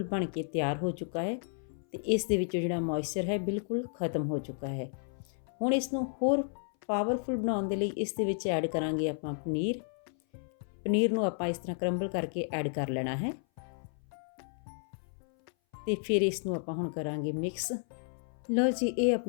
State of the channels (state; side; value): silent; right; 56 dB below the other